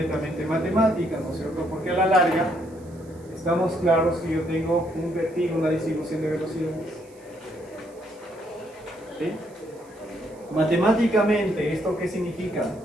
matemática, ¿no es cierto? Porque a la larga estamos claros que yo tengo un perfil, una distribución de velocidades. ¿Sí? Matemáticamente, ¿esto qué significa?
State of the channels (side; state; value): right; noise; hiss, 28 dB below the sound